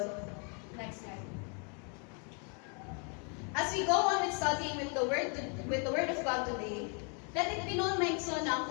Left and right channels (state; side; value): quieter; right; 37.8 dB